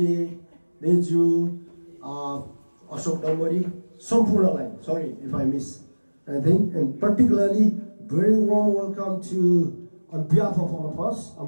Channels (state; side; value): inverted; both; correlation -1.00